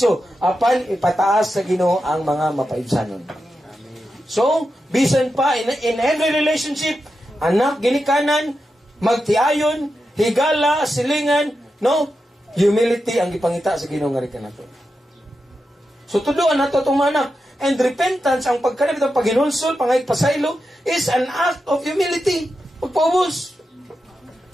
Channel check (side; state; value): both; normal; correlation 0.89